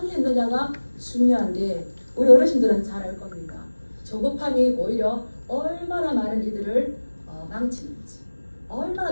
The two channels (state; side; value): inverted; both; correlation -1.00